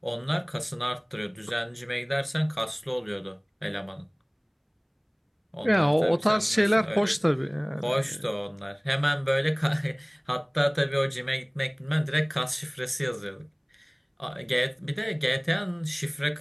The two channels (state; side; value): identical; both; correlation 1.00